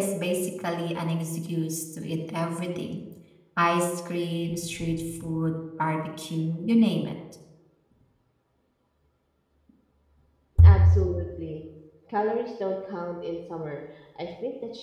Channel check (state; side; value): identical; both; correlation 1.00